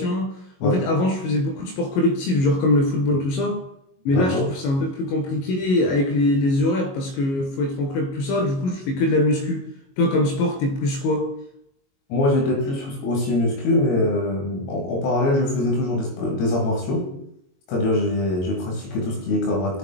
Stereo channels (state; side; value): late; right; 22 ms